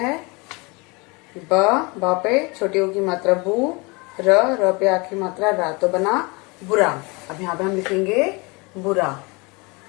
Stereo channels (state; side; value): quieter; right; 27.4 dB